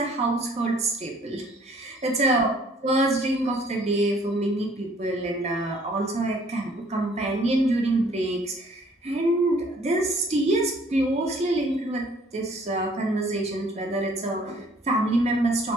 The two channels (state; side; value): normal; both; correlation 0.58